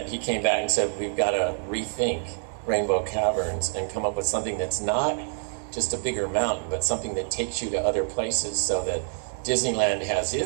he came back and said, "We've got to rethink Rainbow Caverns and come up with something that's not just a bigger mountain, but something that takes you to other places, so that Disneyland has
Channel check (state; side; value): silent; left; 61 dB below the other